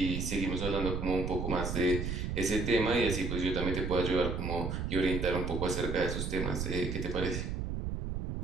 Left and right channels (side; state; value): right; noise; rumble, 3 dB below the sound